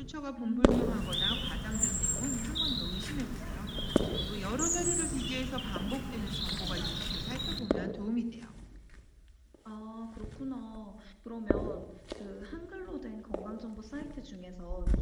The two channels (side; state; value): both; identical; correlation 1.00